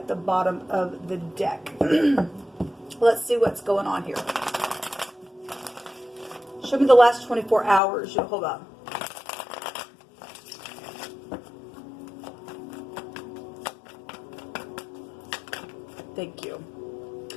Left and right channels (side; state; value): right; drops out; at 7.8 s